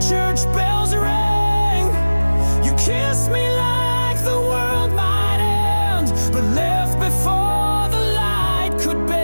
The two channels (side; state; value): both; inverted; correlation -1.00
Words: bells rang. You kissed me like the world might end, but left before the light could